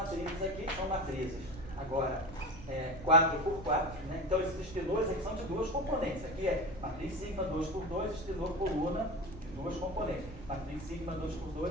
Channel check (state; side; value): noise; right; rumble, 14 dB below the sound